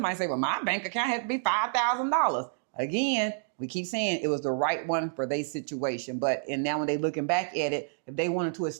might say, well, my bank account had to be $5,000. Again, we keep saying it was the right one for their situation. And now when they're looking back at it, if they wanted to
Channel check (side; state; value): left; silent; digital silence